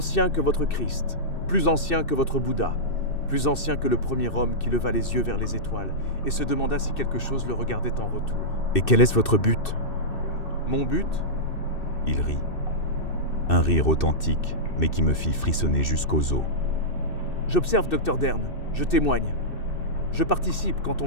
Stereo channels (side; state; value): right; late; 2.6 ms